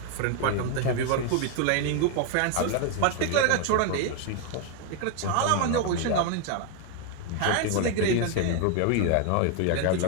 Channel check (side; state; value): both; different; correlation 0.01